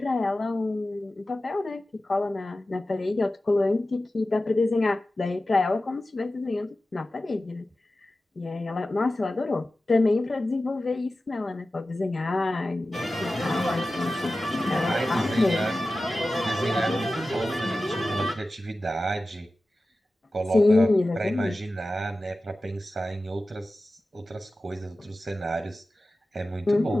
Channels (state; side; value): normal; both; correlation 0.95